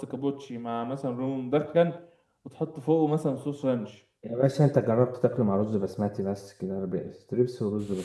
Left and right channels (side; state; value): both; identical; correlation 1.00